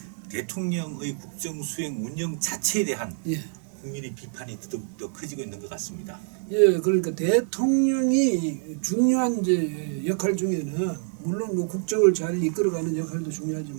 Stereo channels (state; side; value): silent; left; 61 dB below the other